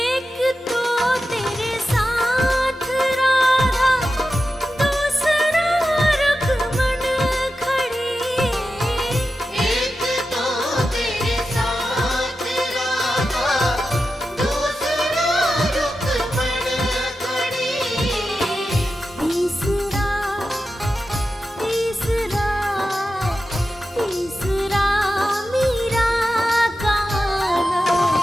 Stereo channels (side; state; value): both; normal; correlation 0.91